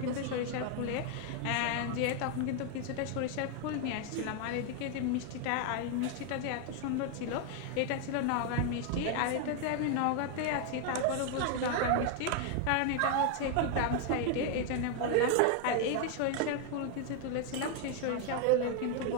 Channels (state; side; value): different; both; correlation 0.01